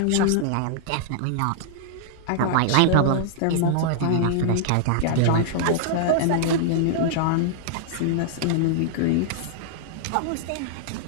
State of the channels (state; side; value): different; both; correlation -0.01